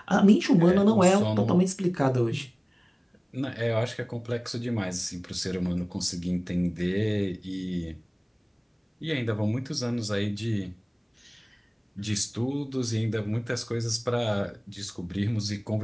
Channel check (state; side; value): identical; both; correlation 1.00